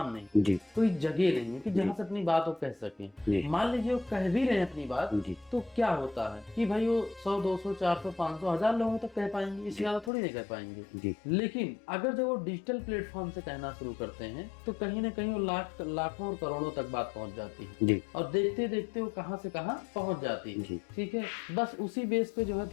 नहीं, कोई जगह नहीं है कि जहाँ से अपनी बात वो कह सकें। मान लीजिए वो कह भी रहे हैं अपनी बात, तो क्या होता है कि भाई वो 100, 200, 400, 500, 1000 लोगों तक कह पाएंगे, इससे ज्यादा थोड़ी नहीं कह पाएंगे। लेकिन अगर जब वो डिजिटल प्लेटफॉर्म से कहना शुरू करते हैं तो कहीं ना कहीं वो लाखों और करोड़ों तक बात पहुंच जाती है, और देखते देखते वो कहां से कहां पहुंच जाती है। ठीक है, बस उसी बेस पे जो है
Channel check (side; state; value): right; drops out; at 10.1 s